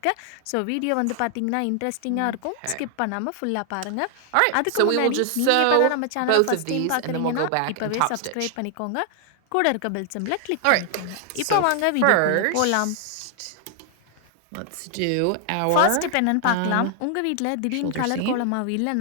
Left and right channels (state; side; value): different; both; correlation 0.00